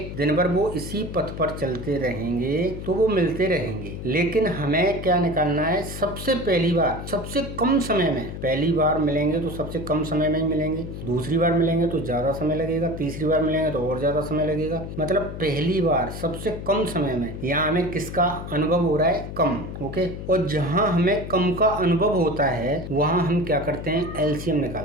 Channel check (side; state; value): left; noise; hum, 8 dB below the sound